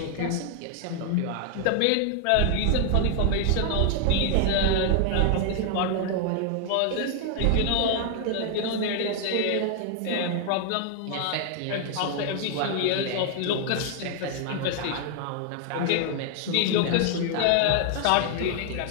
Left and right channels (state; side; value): different; both; correlation 0.00